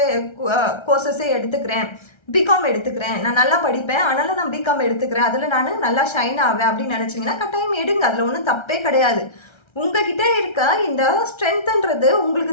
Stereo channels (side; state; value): right; late; 1.3 ms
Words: கோர்சஸே எடுத்துக்கிறேன், பிகாம் எடுத்துக்கிறேன், நான் நல்லா படிப்பேன் அதனால நான் பிகாம் எடுத்துக்கிறேன், அதில் நான் நல்லா ஷைன் ஆவேன் அப்படின்னு நினச்சிங்கன்னா கட்டாயம் எடுங்க. அதில் ஒன்றும் தப்பே கிடையாது. உங்ககிட்ட இருக்க இந்த ஸ்ட்ரென்த்ன்றது